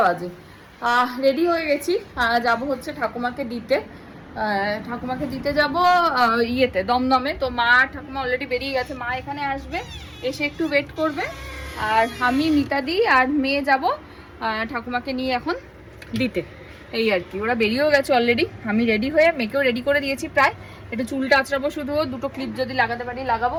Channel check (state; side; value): identical; both; correlation 1.00